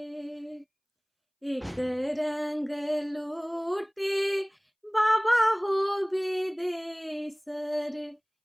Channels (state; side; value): identical; both; correlation 1.00